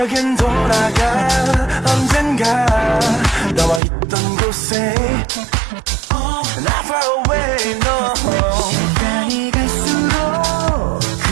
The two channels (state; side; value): drops out; left; at 3.8 s